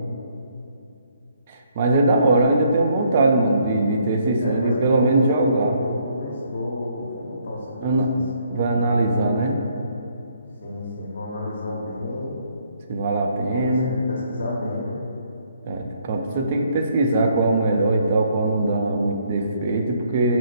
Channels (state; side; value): inverted; both; correlation -0.68